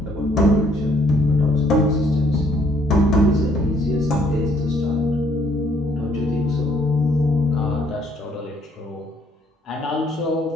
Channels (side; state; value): both; normal; correlation 0.65